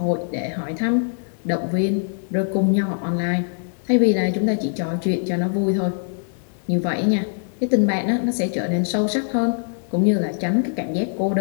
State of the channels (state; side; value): silent; right; digital silence